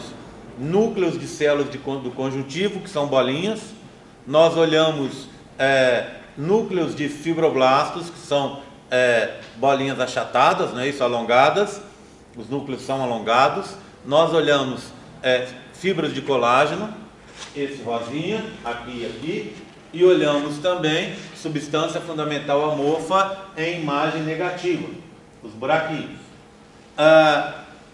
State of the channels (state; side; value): identical; both; correlation 1.00